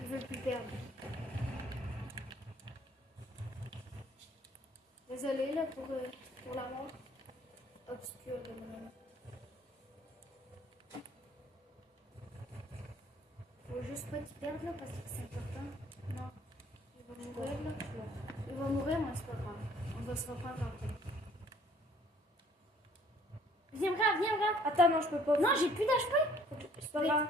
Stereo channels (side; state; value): both; normal; correlation 0.58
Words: veut plus perdre. Désolé, là, pour la mort obscure de mon ami. Faut juste pas qu'il perde, là, parce que c'est important. Non. Il va mourir, là. Il va mourir, mais c'est pas grave. On va se reprendre après. Viens, regarde, viens, regarde. Attends, non, je peux pas. Non, j'ai plus d'HP. C'est pas grave.